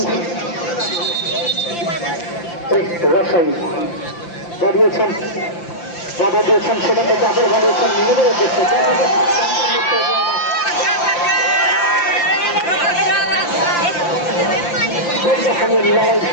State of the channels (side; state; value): right; late; 5.8 ms